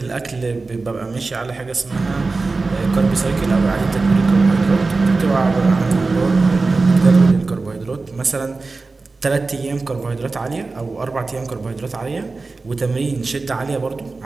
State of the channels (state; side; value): quieter; left; 3.8 dB